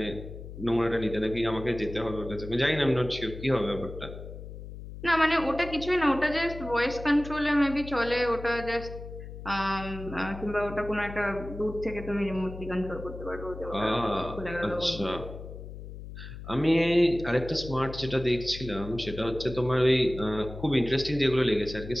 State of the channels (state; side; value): noise; left; hum, 12 dB below the sound